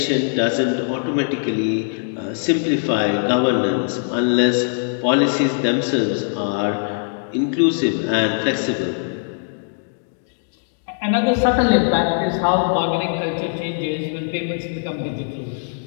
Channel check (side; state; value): right; silent; digital silence